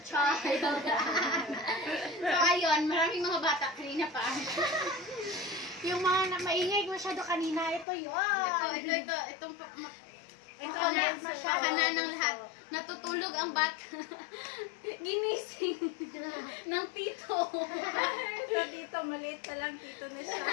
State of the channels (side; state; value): right; drops out; at 7.9 s